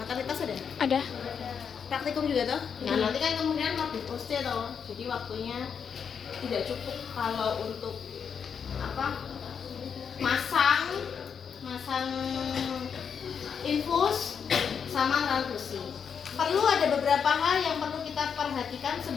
ada praktikum juga toh. Nah nanti kan kemudian mau diposte toh, jadi waktunya tidak cukup kalau untuk apa masang infus sama transfusi. Perlu ada beberapa hal yang perlu kita perhatikan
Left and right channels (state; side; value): quieter; right; 6.9 dB